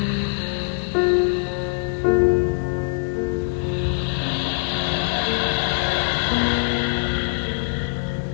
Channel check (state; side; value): silent; right; digital silence